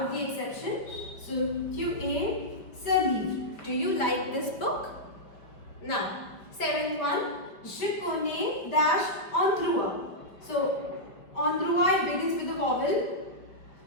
of the exception. So tu aim leave. Do you like this book? Now, seventh one, je connais dash endroit. So, endroit begins with a vowel.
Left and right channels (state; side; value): late; right; 5.0 ms